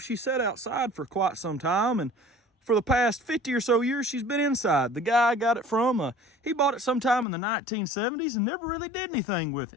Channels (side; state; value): right; drops out; at 7.2 s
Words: she sat outside for quite some time, and for the past 50 or so years, she's been inside. The guy I got it from, he bought it sometime in the 1970s and never really did anything with